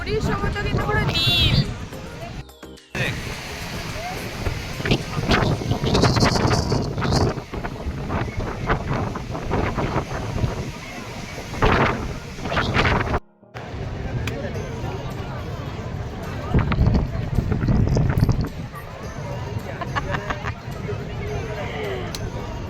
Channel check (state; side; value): identical; both; correlation 1.00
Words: সমুদ্র কিন্তু পুরো নীল।